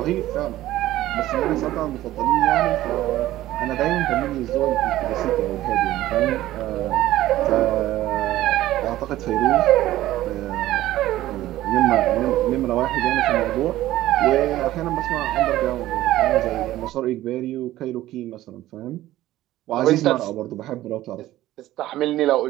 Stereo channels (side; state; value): left; quieter; 15.0 dB